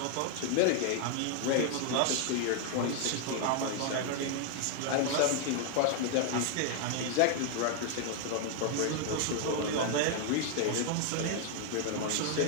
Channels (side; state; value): both; different; correlation 0.00